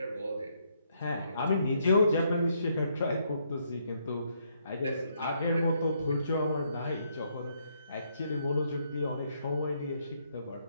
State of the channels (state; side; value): inverted; both; correlation -0.73